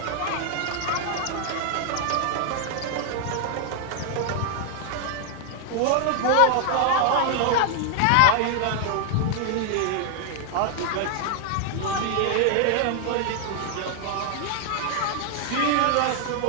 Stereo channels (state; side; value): different; both; correlation 0.00